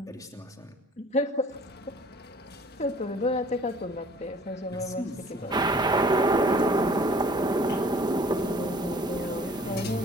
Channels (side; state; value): both; normal; correlation 0.51